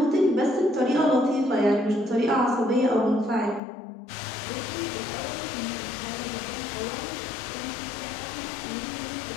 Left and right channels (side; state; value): right; drops out; at 3.6 s